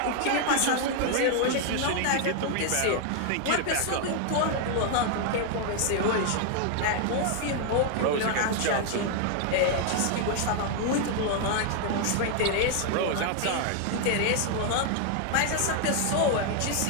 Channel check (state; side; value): different; both; correlation 0.00